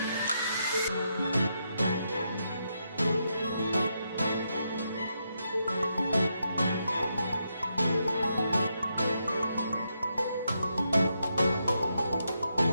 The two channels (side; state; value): both; inverted; correlation -0.82